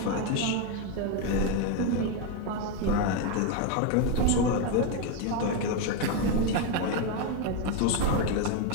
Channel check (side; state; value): both; different; correlation 0.02